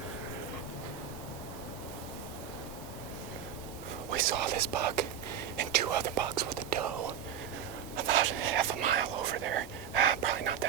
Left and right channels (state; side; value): quieter; left; 8.8 dB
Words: saw this buck and 2 other bucks with a doe about half a mile over there. Probably not